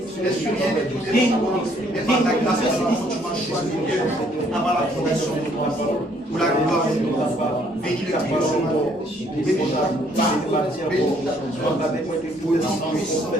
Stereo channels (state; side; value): normal; both; correlation 0.65